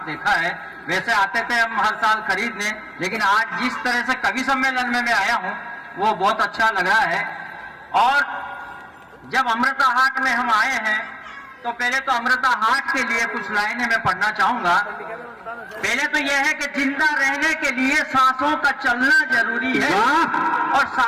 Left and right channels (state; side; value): identical; both; correlation 1.00